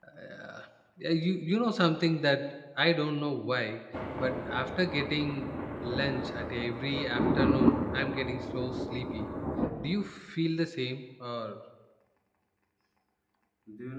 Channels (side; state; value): both; identical; correlation 1.00